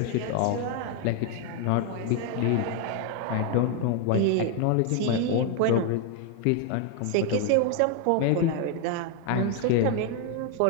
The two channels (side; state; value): both; different; correlation 0.01